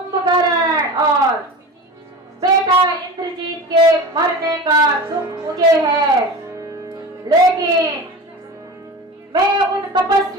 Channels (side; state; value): both; normal; correlation 0.31